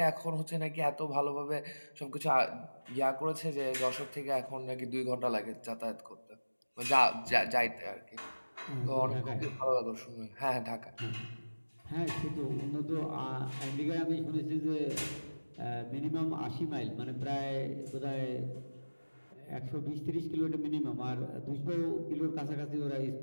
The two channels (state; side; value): inverted; both; correlation -1.00